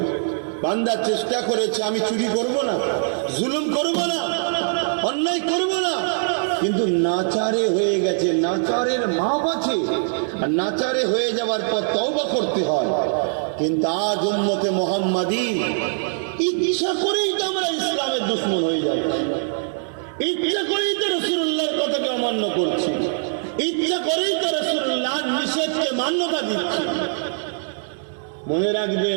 বান্দা চেষ্টা করেছে আমি চুরি করব না, জুলুম করব না, অন্যায় করব না, কিন্তু নাচারে হয়ে গেছে। নাচারের মাপ আছে, আর নাচারে হয়ে যাওয়ার পর তওবা করতে হয়। কিন্তু আজ উম্মতে মুহাম্মাদি ইচ্ছা করেই তো আমরা ইসলামের দুশমন হয়ে যাচ্ছি, ইচ্ছা করেই তো রাসূলুল্লাহর কথাকে অমান্য করছি, ইচ্ছা করেই তো রাসূলুল্লাহর নিষেধকে মান্যতা দিচ্ছি। মনে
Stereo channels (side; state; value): left; silent; digital silence